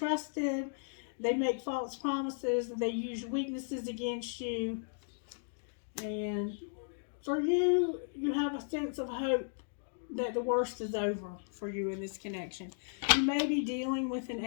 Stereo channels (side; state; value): right; silent; digital silence